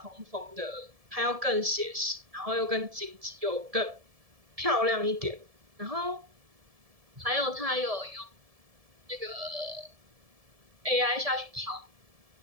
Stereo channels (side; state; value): left; late; 1.7 ms